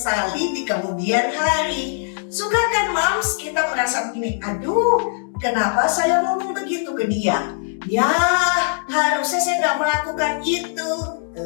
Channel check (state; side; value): silent; right; digital silence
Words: di kemudian hari. Suka kan moms kita merasa begini, aduh kenapa saya ngomong begitu ke dia? Ya harusnya saya nggak melakukan itu.